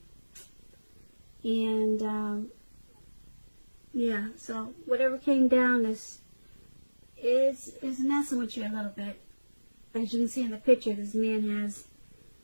and so whatever came down is messing with you a little bit. As you can see in the picture, this man has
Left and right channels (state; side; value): inverted; both; correlation -1.00